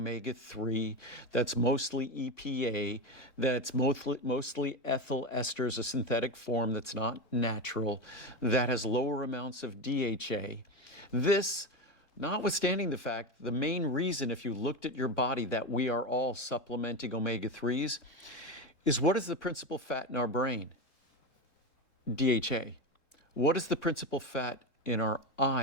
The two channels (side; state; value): right; late; 3.7 ms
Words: that's mostly EPA, that's mostly ethyl esters, a synthetic form that's not natural, that has lower amounts of DHA. This, notwithstanding the fact, the main reason, if you looked at your body, that we are all supplementing omega-3s, is what is the principal fat in our brain? DHA. What is the principal fat in our